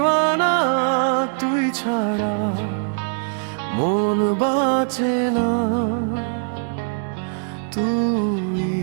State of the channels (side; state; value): left; silent; digital silence